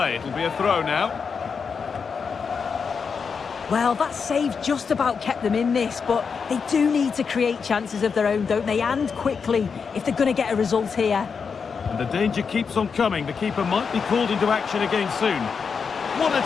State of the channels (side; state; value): right; quieter; 5.8 dB